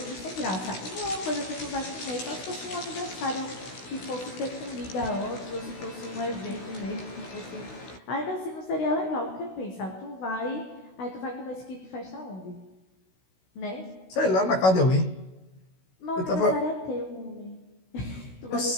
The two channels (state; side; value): late; right; 16 ms